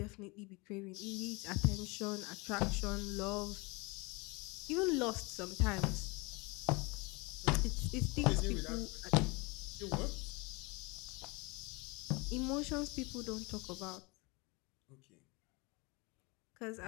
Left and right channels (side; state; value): right; quieter; 27.1 dB